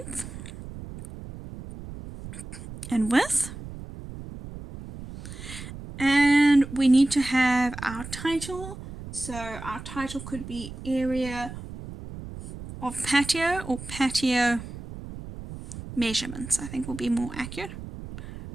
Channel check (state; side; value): noise; right; rumble, 12 dB below the sound